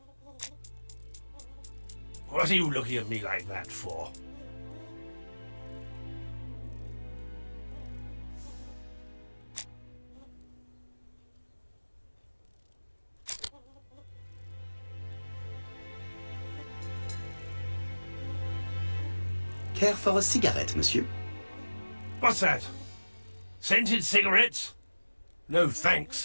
What are you looking at me like that for? Care for a cigarette, monsieur? What's that? Scented cigarettes? No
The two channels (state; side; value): inverted; both; correlation -1.00